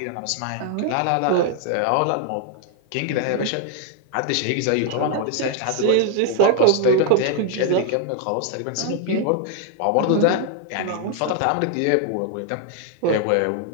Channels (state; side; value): different; both; correlation 0.00